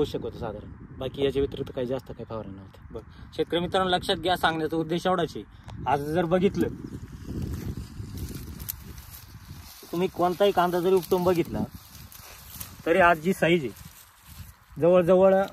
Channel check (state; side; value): identical; both; correlation 1.00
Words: होतं साधारण. बाकी याच्या व्यतिरिक्त काही जास्त काही फवारणी नव्हती. बरं, शेतकरी मित्रांनो लक्षात घ्या, सांगण्याचा उद्देश एवढाच आहे. आज जर बघितलं तुम्ही कोणताही कांदा जरी उपटून बघितला तरी आज जी साईज आहे जवळजवळ